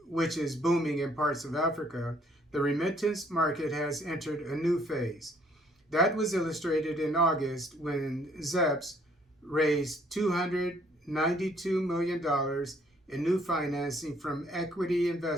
which is booming in parts of Africa, the remittance market has entered a new phase. That was illustrated in August when ZEPS raised $292 million in new financing from equity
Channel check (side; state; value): both; normal; correlation 0.63